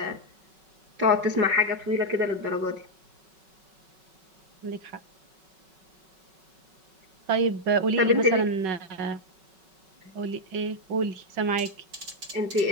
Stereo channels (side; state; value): left; late; 5.3 ms